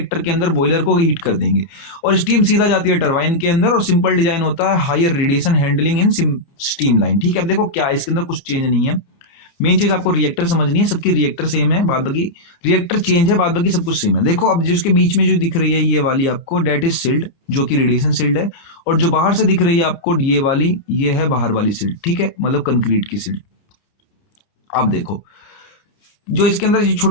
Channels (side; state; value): right; late; 30 ms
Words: के अंदर बॉयलर को हीट कर देंगे और स्टीम सीधा जाती है टरबाइन के अंदर और सिंपल डिजाइन होता है higher radiation handling in steam line, ठीक है। अब देखो क्या है, इसके अंदर कुछ चेंज नहीं है। मेन चीज आपको रिएक्टर समझनी है, सबकी रिएक्टर सेम है, बाद बाकी रिएक्टर चेंज है, बाद बाकी सब कुछ सेम है। देखो अब जिसके बीच में जो दिख रही है ये वाली आपको, डेट इज सील्ड, जो कि रेडिएशन सील्ड है, और जो बाहर से दिख रही है आपको ये वाली, ये है बाहर वाली सील्ड, ठीक है, मतलब कंक्रीट की सील्ड। अब देखो जो इसके अंदर